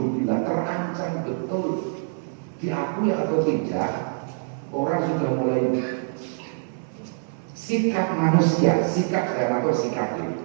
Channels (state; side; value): silent; left; 62 dB below the other